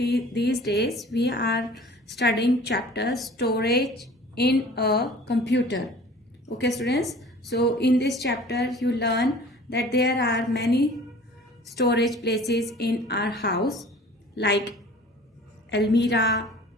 days we are studying chapter storage in a computer. Okay students, so in this chapter you learn that there are many storage places in our house like almirah,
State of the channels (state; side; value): normal; both; correlation 0.46